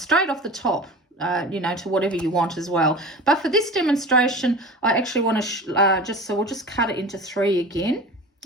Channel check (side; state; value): both; normal; correlation 0.36